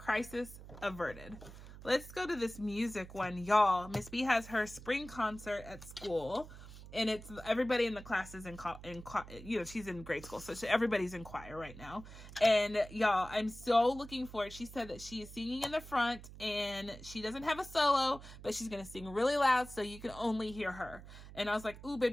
averted. Let's go to this music one, y'all. Miss B has her spring concert at school. And it's everybody in the class is she's in grade school. So everybody's in choir right now. And y'all, I'm so looking for it. She said that she is singing in the front and she doesn't have a solo, but she's going to sing really loud so you can only hear her. And I was like, ooh,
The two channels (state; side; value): noise; right; hum, 15 dB below the sound